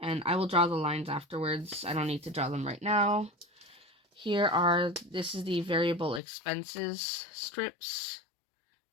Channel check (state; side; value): drops out; right; at 6.2 s